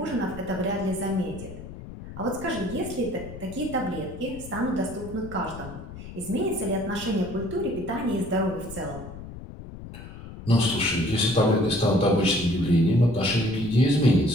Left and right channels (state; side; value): noise; left; rumble, 13 dB below the sound